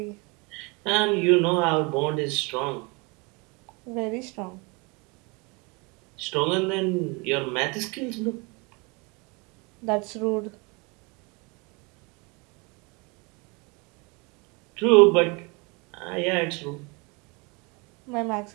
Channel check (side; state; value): left; quieter; 29.0 dB